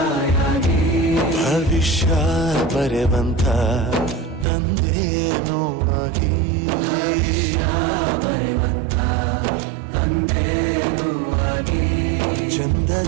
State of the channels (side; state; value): left; drops out; at 4.5 s